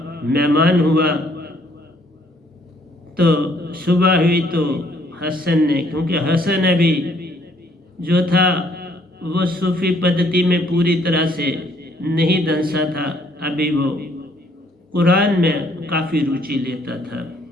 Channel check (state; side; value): normal; both; correlation 0.65